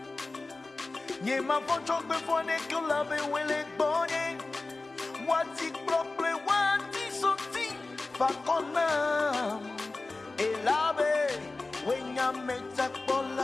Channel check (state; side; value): quieter; right; 3.4 dB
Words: Niema vocho kwe fone ke lave wele bonye. Wati prople wati soti fakona. Elabe wenya meta